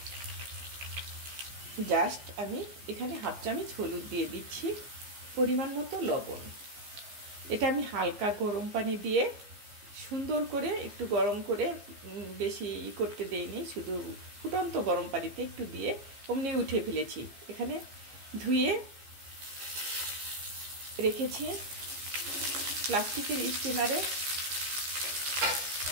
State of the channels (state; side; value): late; left; 15 ms